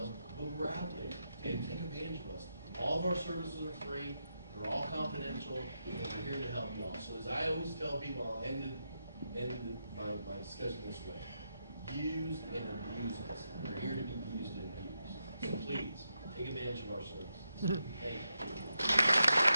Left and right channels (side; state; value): both; inverted; correlation -0.85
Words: but we're out there and take advantage of us. All of our services are free. They're all confidential, and we're here to help you all. So as I always tell people, I'll end my discussion this way: use and abuse us. We're here to be used and abused. So please take advantage of our services. Thank you.